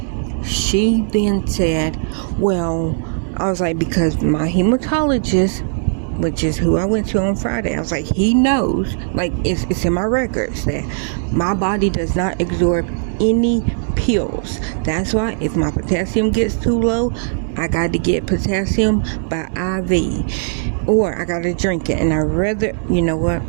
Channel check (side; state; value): left; silent; 66 dB below the other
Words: She then said, well, I was like, because my hematologist, which is who I went to on Friday, I was like, he knows, like, it's in my records that my body does not absorb any pills. That's why if my potassium gets too low, I got to get potassium by IV, or I got to drink it. And I'd rather,